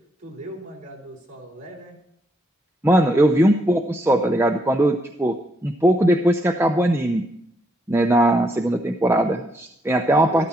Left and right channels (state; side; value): normal; both; correlation 0.76